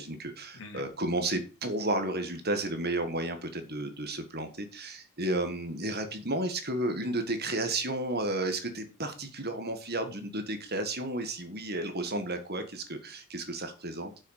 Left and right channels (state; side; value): normal; both; correlation 0.16